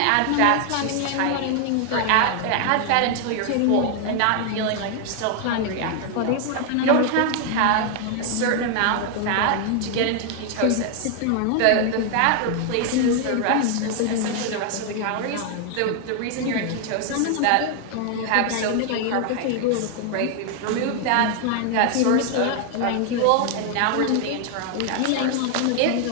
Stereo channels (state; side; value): different; both; correlation 0.00